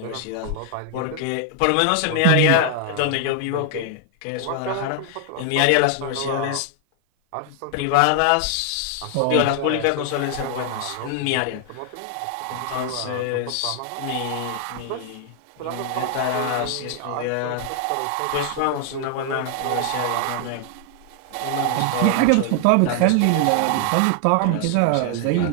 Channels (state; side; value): different; both; correlation 0.00